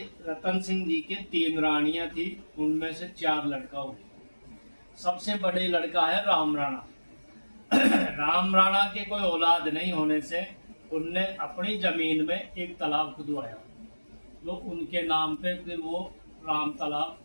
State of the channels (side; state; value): both; inverted; correlation -1.00